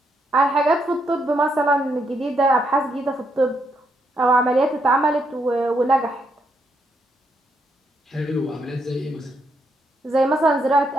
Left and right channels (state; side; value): normal; both; correlation 0.77